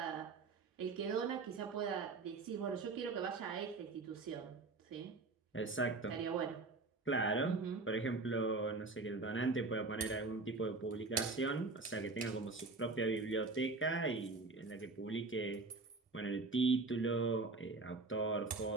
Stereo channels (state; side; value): quieter; left; 3.7 dB